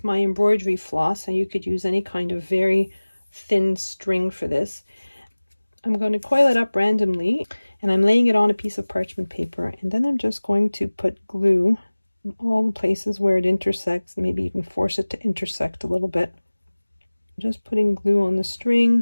my embroidery floss, and you could use any kind of very thin string for this. I'm going to coil it up randomly, and I'm laying it on a piece of parchment paper, and then I'm just going to put glue in all the places where it intersects, maybe even force it to intersect a little bit. Just putting glue on the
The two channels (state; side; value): inverted; both; correlation -1.00